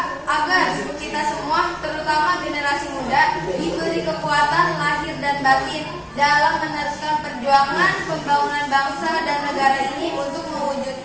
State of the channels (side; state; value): both; identical; correlation 1.00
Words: agar kita semua, terutama generasi muda, diberi kekuatan lahir dan batin dalam meneruskan perjuangan pembangunan bangsa dan negara ini untuk